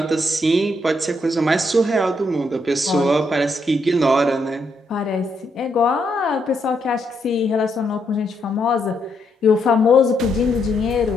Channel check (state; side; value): normal; both; correlation 0.77